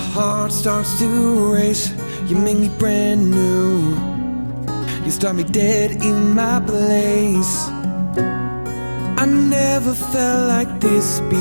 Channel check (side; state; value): both; inverted; correlation -1.00